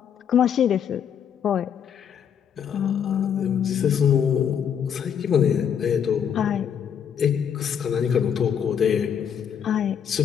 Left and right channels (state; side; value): quieter; right; 8.1 dB